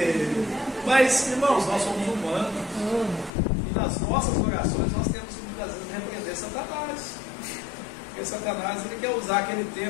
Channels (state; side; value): drops out; right; at 3.3 s